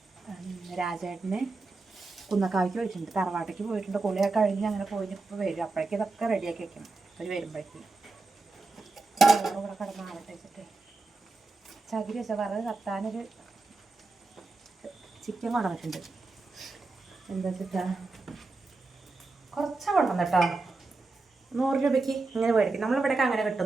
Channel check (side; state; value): left; quieter; 3.5 dB